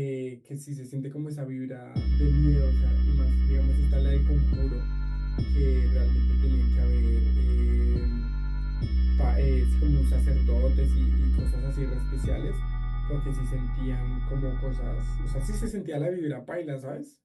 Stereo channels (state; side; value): identical; both; correlation 1.00